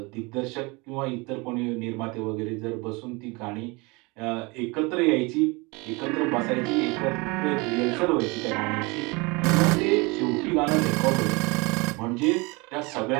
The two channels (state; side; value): quieter; left; 26.6 dB